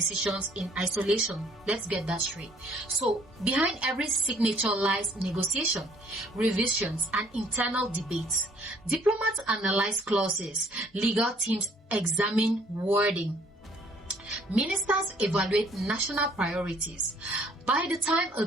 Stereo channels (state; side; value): normal; both; correlation 0.60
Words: in isolation. Let's get that straight. So, behind every signature lies negotiation, revisions, and internal debates. Diplomats analyze clauses, legal teams examine wording. Ministers evaluate national priorities. By the time a